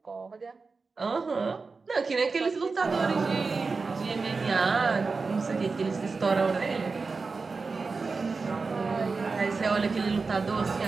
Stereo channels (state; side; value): quieter; left; 4.3 dB